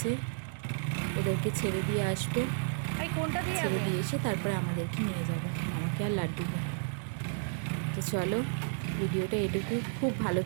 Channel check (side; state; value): left; silent; 56 dB below the other